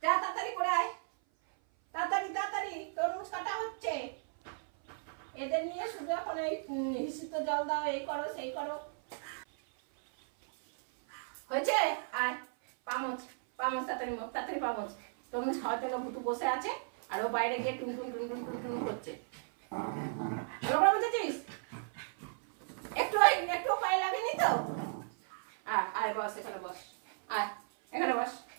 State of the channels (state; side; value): silent; left; 54 dB below the other